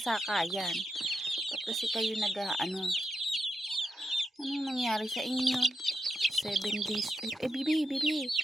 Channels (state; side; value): normal; both; correlation 0.84